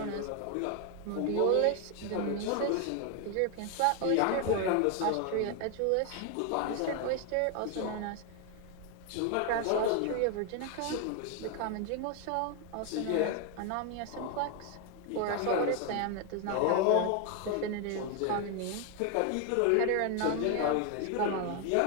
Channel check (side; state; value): both; different; correlation 0.00